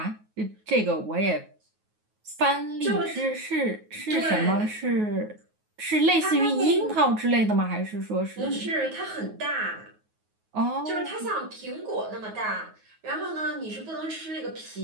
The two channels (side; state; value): left; late; 9.4 ms